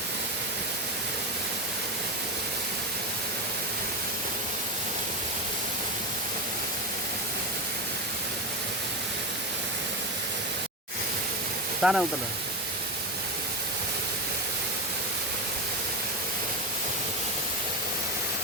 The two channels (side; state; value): both; normal; correlation 0.18